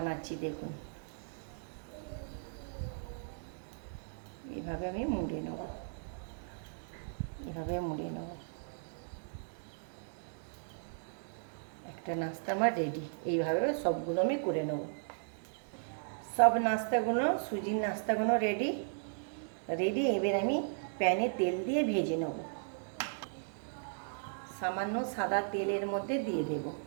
দেখুন। এভাবে আমি মুড়ে নেব, এভাবে মুড়ে নেব। একটা নাস্তা আমার রেডি। এইভাবে সবগুলো আমি করে নেব। সব নাস্তাগুলো, সুজির নাস্তাগুলো রেডি। এবার আমি প্যানে তেল দিয়ে ভেজে নেব। সামান্য সাদা তেলের মধ্যে দিয়ে দেব,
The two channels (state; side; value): silent; left; digital silence